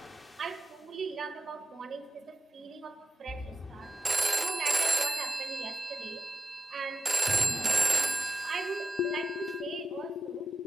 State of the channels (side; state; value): both; normal; correlation 0.92